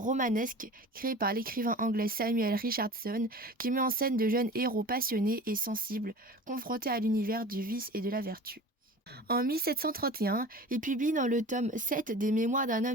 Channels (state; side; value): normal; both; correlation 0.38